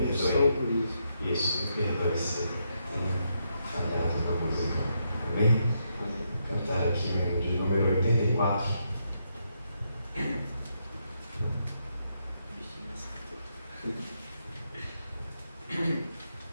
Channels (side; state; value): both; inverted; correlation -0.80